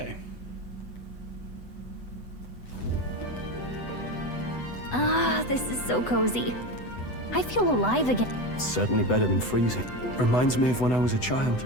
Ah, this is so cozy. I feel alive again. It's certainly better than freezing. Reminds me of when I was a child.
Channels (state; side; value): late; right; 8.0 ms